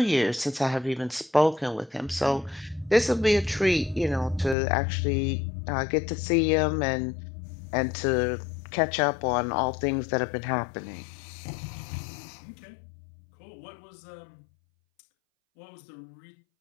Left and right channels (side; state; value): right; drops out; at 4.5 s